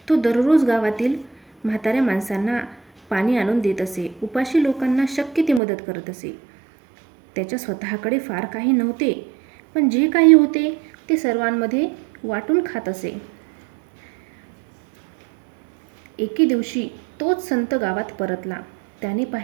तो दररोज गावातील म्हाताऱ्या माणसांना पाणी आणून देत असे. उपाशी लोकांना शक्य ती मदत करत असे. त्याच्या स्वतःकडे फार काही नव्हते, पण जे काही होते ते सर्वांमध्ये वाटून खात असे. एके दिवशी तोच संत गावात परतला. त्याने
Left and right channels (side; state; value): left; drops out; at 5.6 s